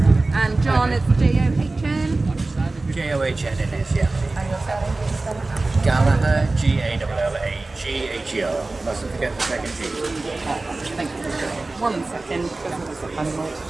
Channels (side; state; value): left; quieter; 3.2 dB